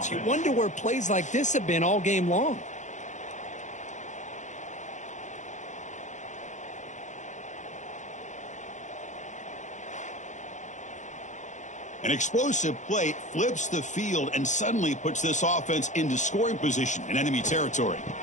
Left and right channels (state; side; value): late; right; 0.35 ms